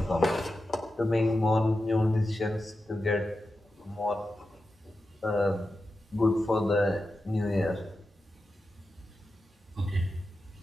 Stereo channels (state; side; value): normal; both; correlation 0.91